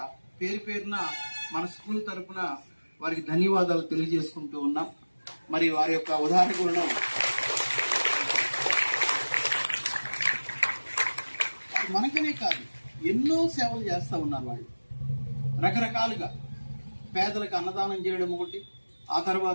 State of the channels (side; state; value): both; inverted; correlation -1.00